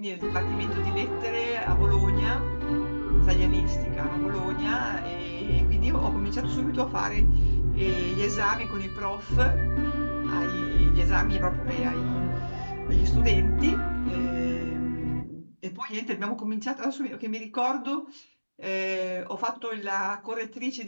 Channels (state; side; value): inverted; both; correlation -1.00